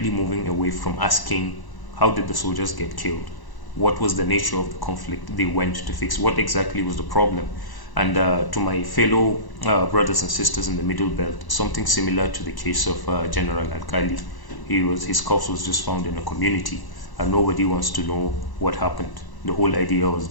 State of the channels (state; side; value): late; right; 1.0 ms